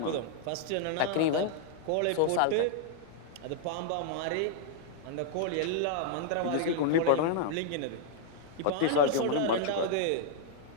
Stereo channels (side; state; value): both; different; correlation -0.01